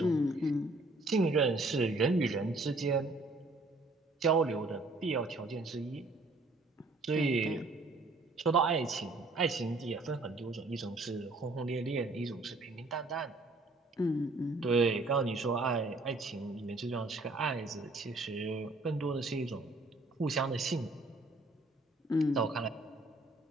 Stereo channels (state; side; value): quieter; left; 3.0 dB